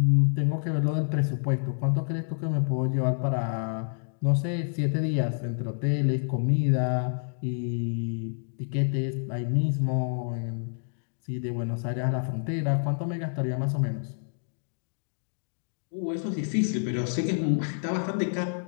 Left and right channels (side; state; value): right; silent; digital silence